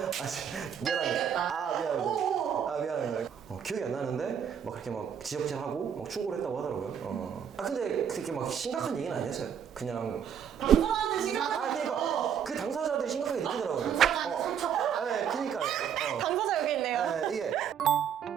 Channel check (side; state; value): left; quieter; 8.2 dB